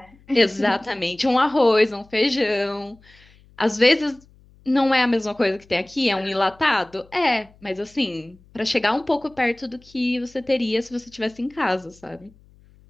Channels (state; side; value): noise; left; hum, 28 dB below the sound